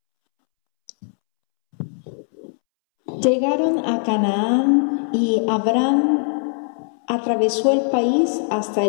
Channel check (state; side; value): silent; right; 65 dB below the other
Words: Llegaron a Canaán y Abraham atravesó el país hasta